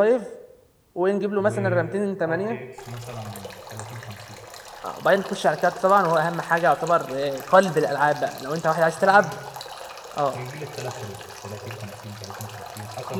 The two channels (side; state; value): both; identical; correlation 1.00